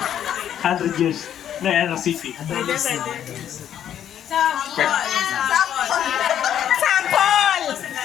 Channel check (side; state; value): right; quieter; 10.1 dB